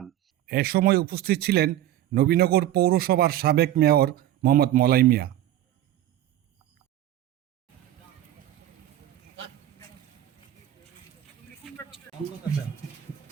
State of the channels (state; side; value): quieter; left; 12.7 dB